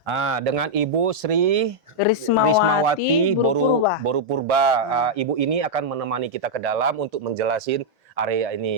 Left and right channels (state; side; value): normal; both; correlation -0.04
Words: Dengan Ibu Sri Rismawati Boru Purba. Ibu ini akan menemani kita ke dalam untuk menjelasin area